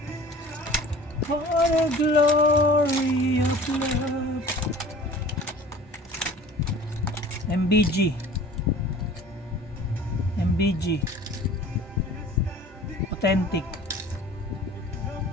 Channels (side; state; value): both; normal; correlation 0.45